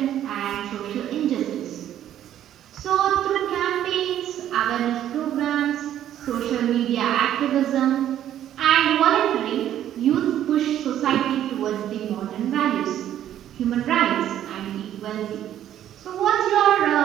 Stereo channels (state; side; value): quieter; left; 11.3 dB